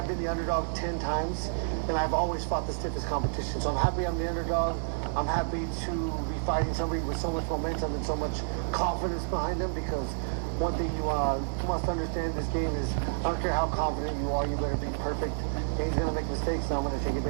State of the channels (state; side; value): silent; left; digital silence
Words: been the underdog 10 times, and I've always fought the stiffest competition. So I'm happy I'm the underdog. I'm happy to be fighting somebody with so much momentum and so much confidence behind them, because one thing you must understand this game is, I don't care how confident you are, you better be perfect. And he's going to make mistakes, and I'm going to take